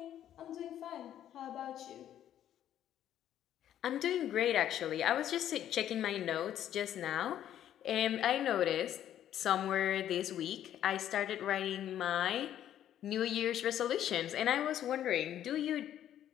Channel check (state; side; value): quieter; right; 11.1 dB